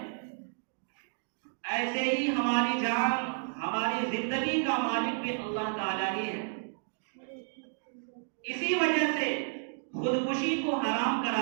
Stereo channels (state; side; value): silent; left; digital silence